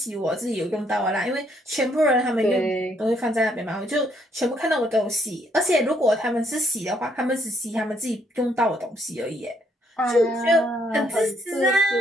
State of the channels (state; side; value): normal; both; correlation 0.70